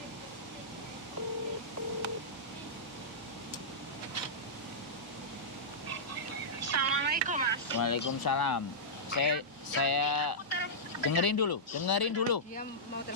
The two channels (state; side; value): normal; both; correlation -0.13